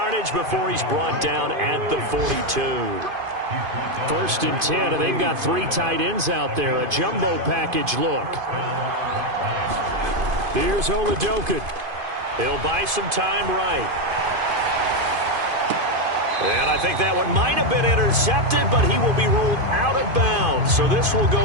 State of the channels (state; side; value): late; left; 2.5 ms